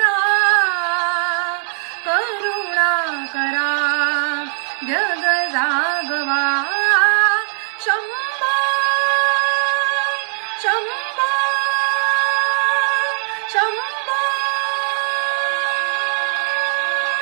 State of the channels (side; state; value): left; silent; digital silence